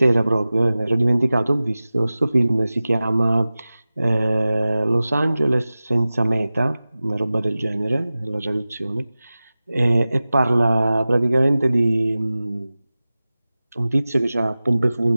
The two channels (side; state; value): both; inverted; correlation -0.97